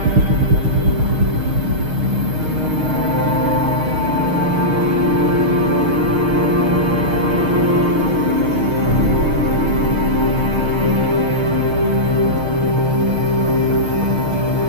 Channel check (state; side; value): late; left; 6.5 ms